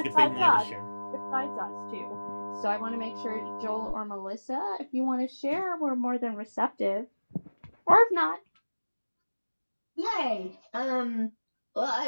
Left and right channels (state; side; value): inverted; both; correlation -1.00